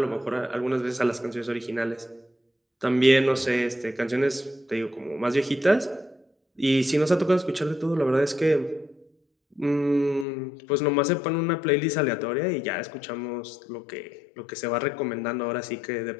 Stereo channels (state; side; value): drops out; right; at 10.2 s